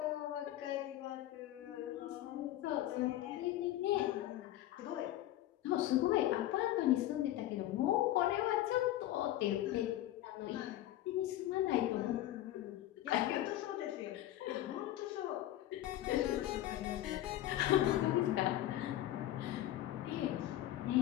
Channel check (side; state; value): right; quieter; 14.1 dB